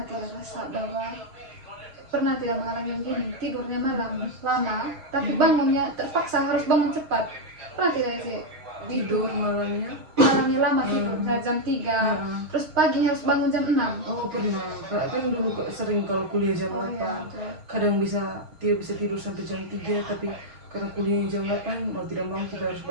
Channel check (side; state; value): left; late; 6.4 ms